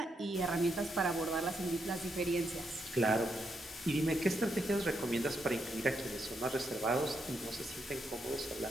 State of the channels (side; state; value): both; normal; correlation 0.80